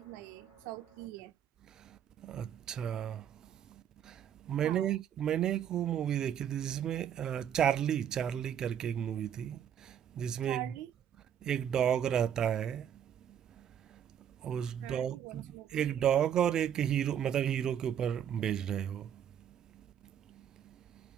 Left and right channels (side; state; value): left; quieter; 9.4 dB